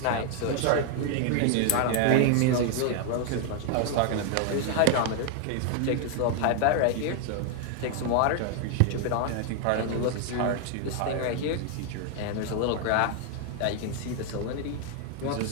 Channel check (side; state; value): both; different; correlation 0.00